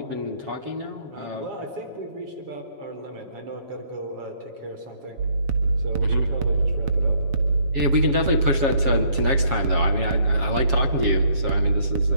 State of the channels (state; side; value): late; left; 7.3 ms